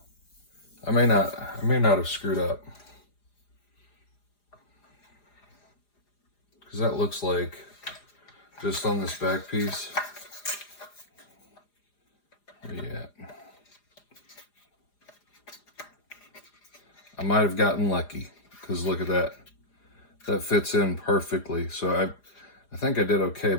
I may not have screwed up. Because that looks like, just on this back piece, yeah, I might have gotten lucky, because look at that. That fits in perfectly. So I think I did okay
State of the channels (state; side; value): late; right; 4.9 ms